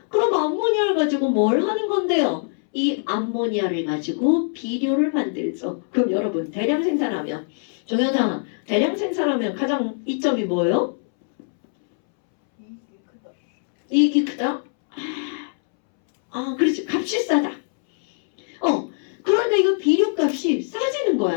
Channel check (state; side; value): silent; right; 64 dB below the other